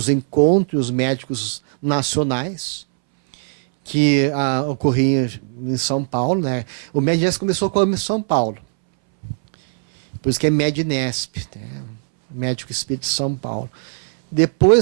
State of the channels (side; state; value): left; silent; 64 dB below the other